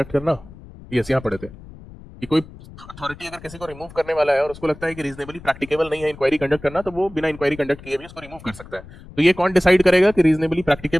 करना, यस यहाँ पढ़े थे कि कोई अथॉरिटी अगर किसी को रिमूव करने वाला है और उसको लगता है कि रीजनेबली प्रैक्टिकेबल नहीं है इंक्वायरी कंडक्ट करना, तो वो बिना इंक्वायरी कंडक्ट किए भी उसको रिमूव कर सकता है। तो ये कौन डिसाइड करेगा कि रीजनेबली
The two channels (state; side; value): noise; left; rumble, 18 dB below the sound